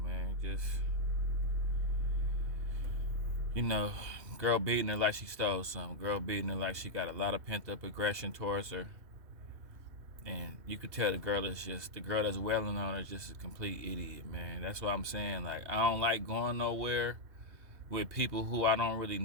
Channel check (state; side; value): late; left; 2.7 ms